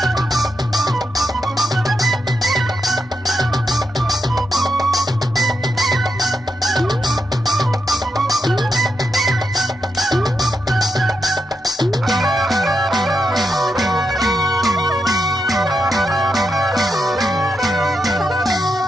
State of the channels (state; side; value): normal; both; correlation 0.85